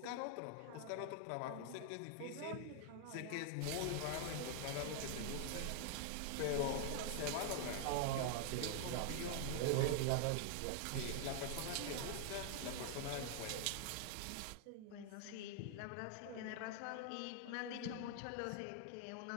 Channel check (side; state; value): both; different; correlation 0.00